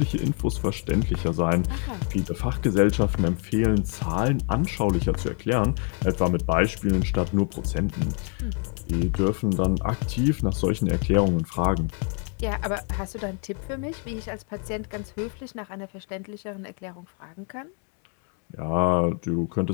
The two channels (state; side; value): quieter; right; 35.0 dB